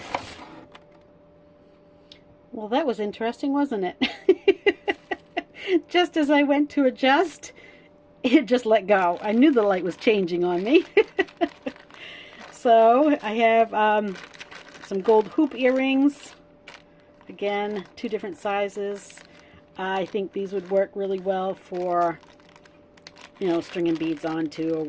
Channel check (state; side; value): identical; both; correlation 1.00